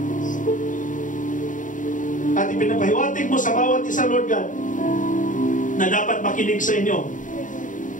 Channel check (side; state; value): right; late; 0.38 ms